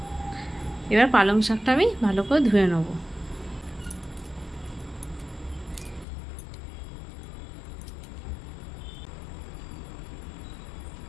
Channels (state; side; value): drops out; right; at 6.1 s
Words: এবার পালং শাকটা আমি ভালো করে ধুয়ে নেবো।